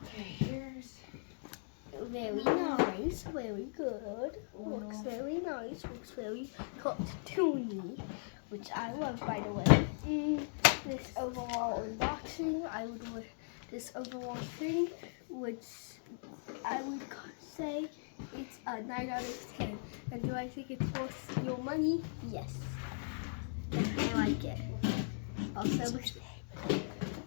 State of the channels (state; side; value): silent; right; digital silence